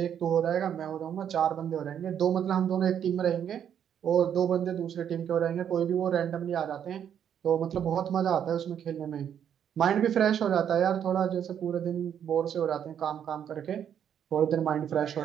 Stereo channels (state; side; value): quieter; left; 9.0 dB